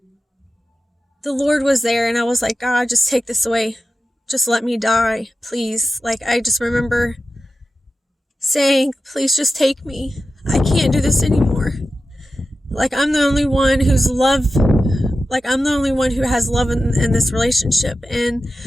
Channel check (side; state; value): both; normal; correlation 0.92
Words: Lord was there, and I was like, God, just take this away. Just let me die, please. Like, I just remember saying, please just take me. I can't do this anymore. Like, I'm the only one who's I'm the only one who has love in this relationship, and